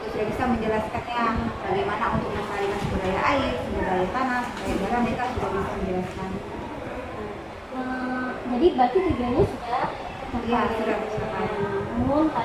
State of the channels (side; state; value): both; identical; correlation 1.00